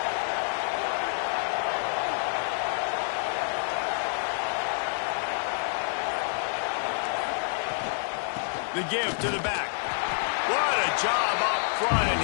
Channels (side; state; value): right; silent; digital silence